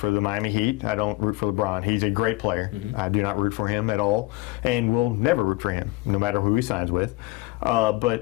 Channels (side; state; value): right; quieter; 21.1 dB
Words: the Miami Heat. I don't root for LeBron. He's a great player. Mm-hmm. I do not root for him at all, and will never root for him, no matter who he signs with.